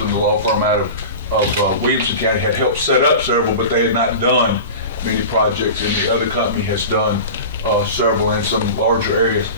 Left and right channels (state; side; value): inverted; both; correlation -0.32